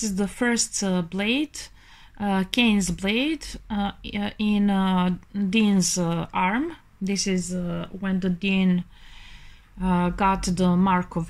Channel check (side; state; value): both; identical; correlation 1.00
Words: is the first blade, Cain's blade, in Dean's arm. This is when the Dean got the mark